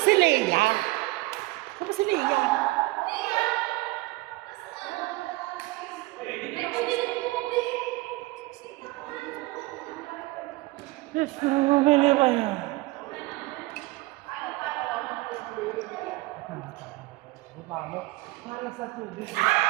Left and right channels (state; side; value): quieter; left; 21.1 dB